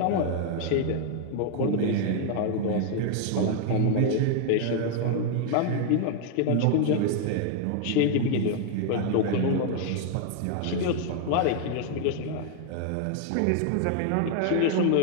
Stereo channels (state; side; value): different; both; correlation 0.00